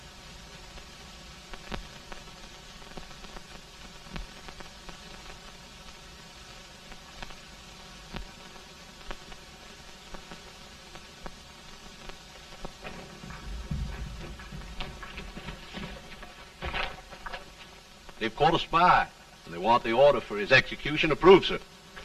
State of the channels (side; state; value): both; identical; correlation 1.00